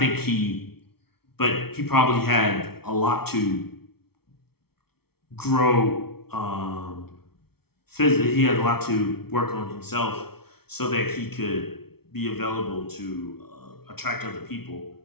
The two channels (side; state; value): right; late; 0.95 ms